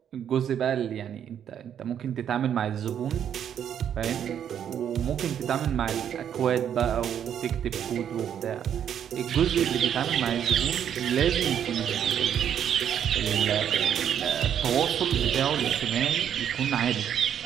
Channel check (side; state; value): left; quieter; 9.1 dB